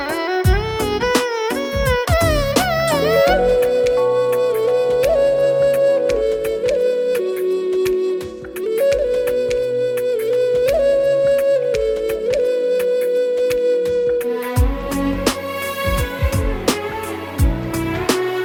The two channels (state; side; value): identical; both; correlation 1.00